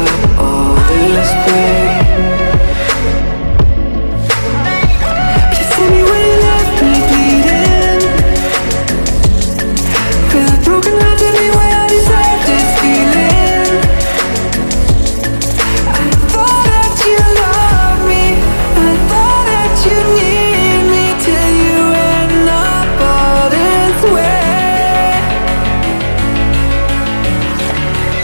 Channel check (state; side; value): inverted; both; correlation -1.00